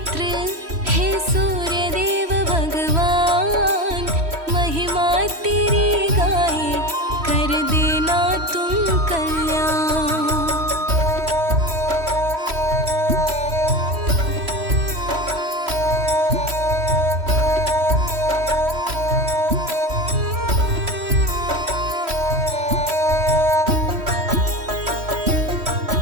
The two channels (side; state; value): left; late; 3.1 ms